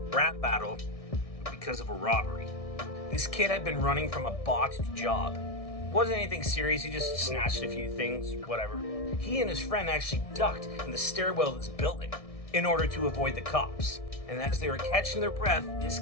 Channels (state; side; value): late; right; 1.6 ms